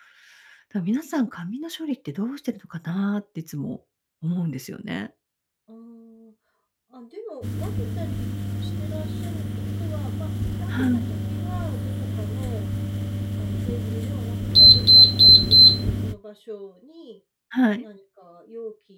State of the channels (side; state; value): both; identical; correlation 1.00